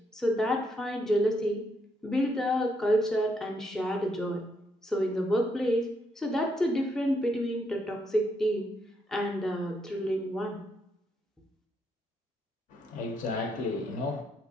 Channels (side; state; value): both; normal; correlation 0.76